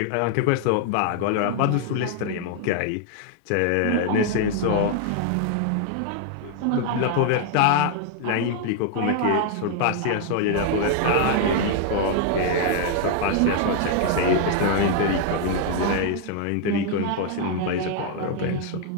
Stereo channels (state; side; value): different; both; correlation 0.00